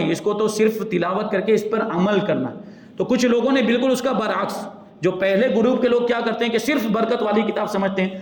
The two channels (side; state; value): both; identical; correlation 1.00